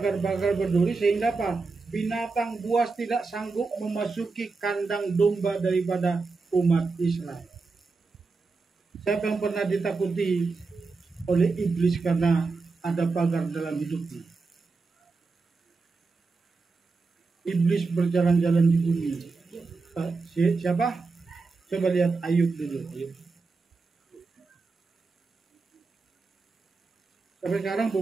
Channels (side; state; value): left; quieter; 4.1 dB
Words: berduri sehingga apa? Binatang buas tidak sanggup memasuki kandang domba daripada umat Israel. Siapa yang pernah ditakuti oleh iblis karena ada pagar dalam hidupnya? Iblis berjalan-jalan di bumi. Siapa? Coba lihat Ayub dulu. Sampai sekarang